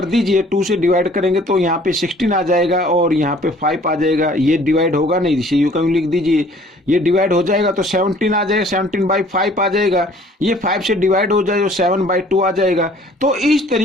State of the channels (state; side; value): normal; both; correlation 0.54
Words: दीजिए, 2 से डिवाइड करेंगे तो यहाँ पे 16 आ जाएगा और यहाँ पे 5 आ जाएगा। ये डिवाइड होगा नहीं, इसे यूं कहीं लिख दीजिए। ये डिवाइड हो जाएगा तो 17 आ जाएगा, 17/5 आ जाएगा। ये 5 से डिवाइड हो जाए तो 7/2 आ जाएगा। तो इस